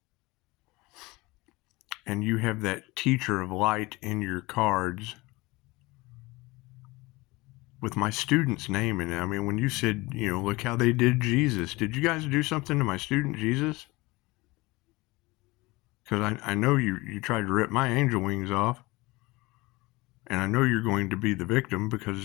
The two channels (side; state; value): right; quieter; 22.3 dB